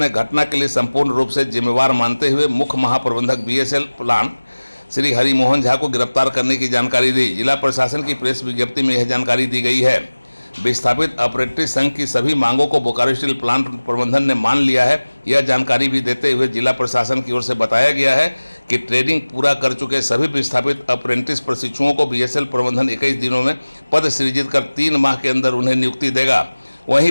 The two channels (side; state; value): both; inverted; correlation -1.00